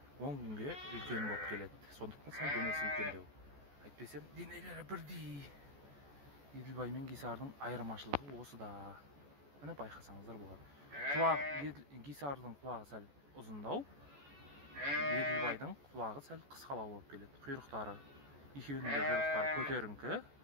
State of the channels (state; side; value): late; left; 14 ms